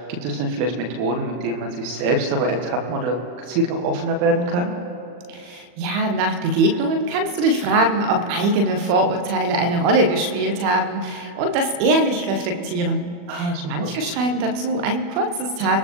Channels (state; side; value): late; left; 40 ms